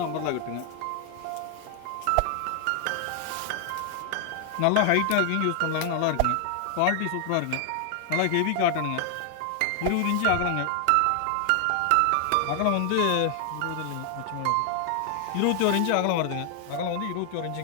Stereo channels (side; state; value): both; different; correlation 0.00